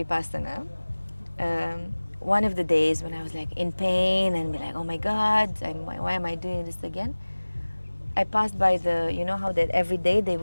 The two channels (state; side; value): inverted; both; correlation -1.00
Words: one of the days when I was like in pain and be like, oh my God, why am I doing this again? I passed by you know how that every day they